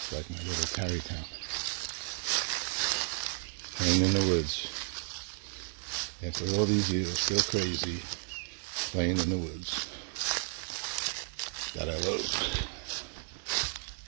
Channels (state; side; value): silent; left; 56 dB below the other